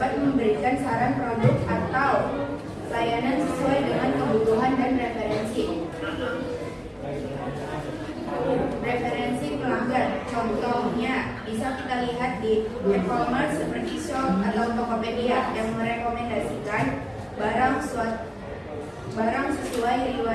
memberikan saran produk atau layanan sesuai dengan kebutuhan dan referensi pelanggan. Contohnya bisa kita lihat di e-commerce seperti Shop atau Tokopedia yang merekomendasikan barang sesuai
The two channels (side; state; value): both; identical; correlation 1.00